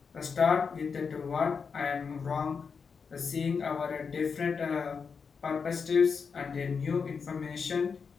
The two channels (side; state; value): right; quieter; 5.7 dB